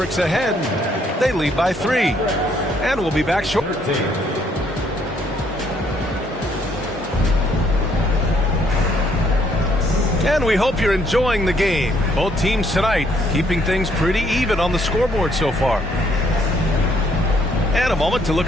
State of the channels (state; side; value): normal; both; correlation 0.68